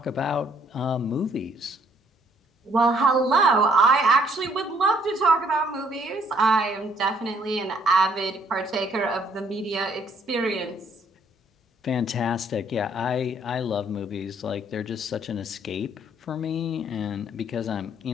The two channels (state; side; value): normal; both; correlation 0.65